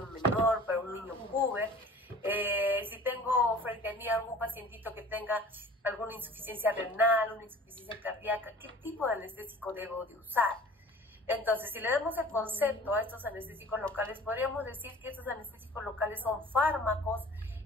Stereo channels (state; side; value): normal; both; correlation 0.45